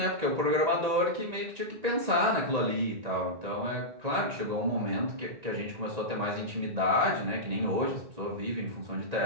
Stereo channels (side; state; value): left; late; 1.9 ms